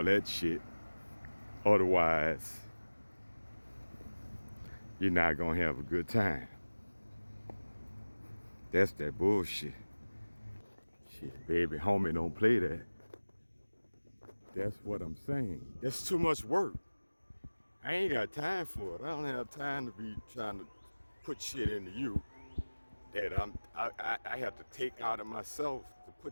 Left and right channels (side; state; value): both; inverted; correlation -1.00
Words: that shit. Otherwise, you're not gonna have a good time. That's that bullshit. Shit, baby, homie, don't play that. That's what I'm saying. That's too much work. I ain't got time for it. I don't have time to be trying to put shit into you that I have to take out of myself to